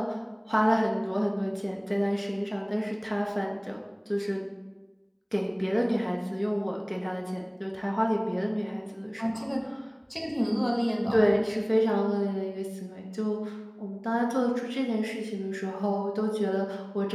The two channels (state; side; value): identical; both; correlation 1.00